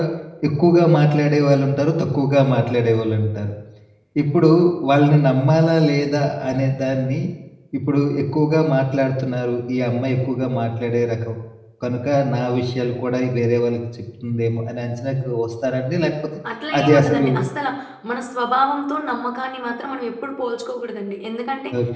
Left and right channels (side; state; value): both; identical; correlation 1.00